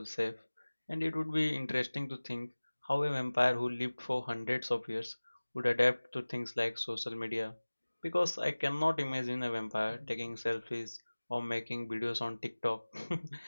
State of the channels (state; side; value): inverted; both; correlation -1.00